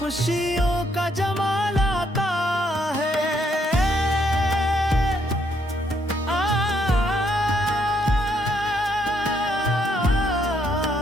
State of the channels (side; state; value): both; normal; correlation 0.72